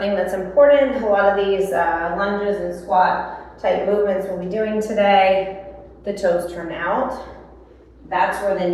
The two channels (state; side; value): identical; both; correlation 1.00